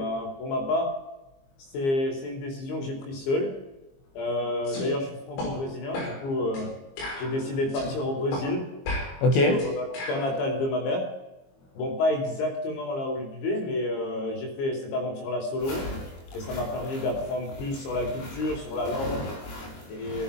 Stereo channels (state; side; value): late; right; 22 ms